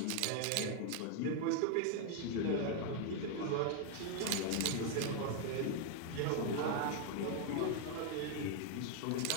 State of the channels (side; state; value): both; different; correlation 0.00